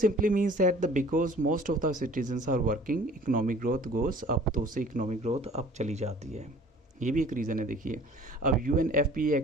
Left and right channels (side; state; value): both; normal; correlation 0.49